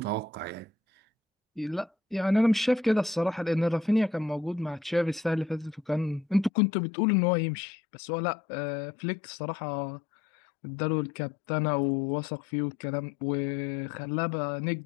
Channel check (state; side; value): drops out; right; at 6.5 s